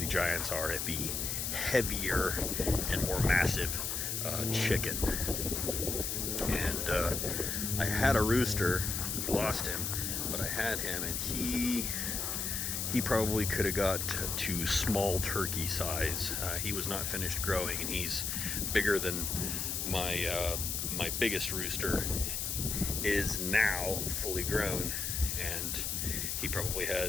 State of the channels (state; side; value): noise; left; hiss, 1 dB below the sound